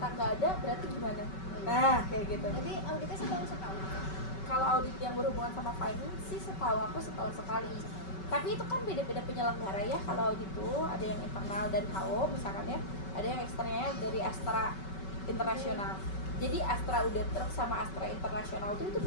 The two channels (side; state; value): right; late; 5.3 ms